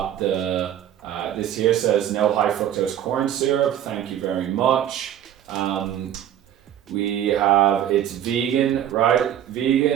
the this here says no high fructose corn syrup, thank you very much. We have, it's vegan, right?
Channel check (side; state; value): left; quieter; 10.7 dB